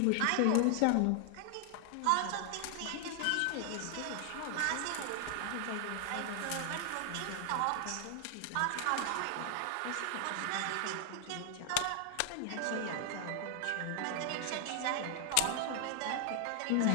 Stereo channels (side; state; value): both; different; correlation 0.00